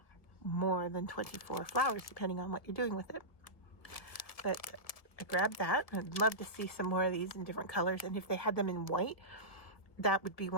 more than 24 flowers, depending on what you're doing with it. But I grabbed that. I'd love to see some more of these in different colors, and if they had them in white, that would be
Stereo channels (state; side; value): late; right; 1.7 ms